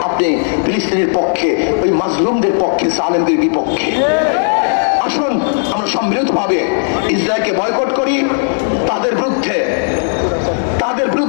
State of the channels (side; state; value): right; silent; 68 dB below the other